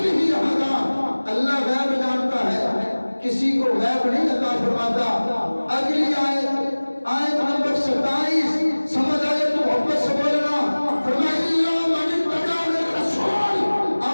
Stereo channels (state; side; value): inverted; both; correlation -1.00